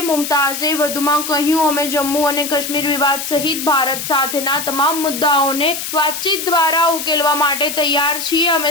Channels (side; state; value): left; noise; hiss, 6 dB below the sound